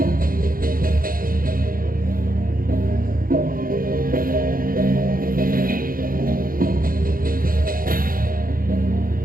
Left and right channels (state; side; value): late; left; 0.41 ms